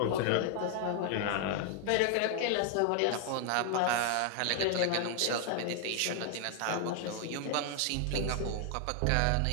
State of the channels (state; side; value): different; both; correlation 0.00